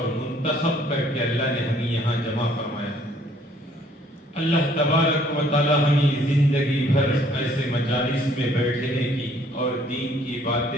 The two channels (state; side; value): normal; both; correlation 0.61